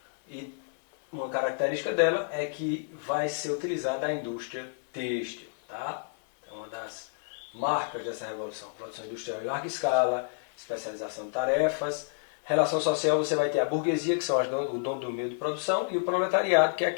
e uma característica dela é que vai ser utilizada a indústria têxtil. Tá? É uma das marcas dessa revolução. Produção industrial em larga escala, especialização de tarefas. Relação social, você vai ter a burguesia, que são o dono do meio de produção, e o proletariado, que é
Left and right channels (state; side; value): silent; right; 58 dB below the other